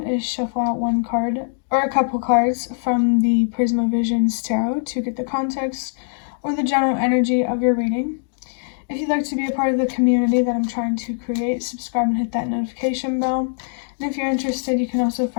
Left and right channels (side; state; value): right; silent; digital silence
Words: is shuffle out one card or a couple cards from the Prisma Visions Tarot to get the context or the general energy of your reading. If you'd like to be a part of the community that I'm trying to create, subscribe and hit that notification bell. And if you're interested, you can also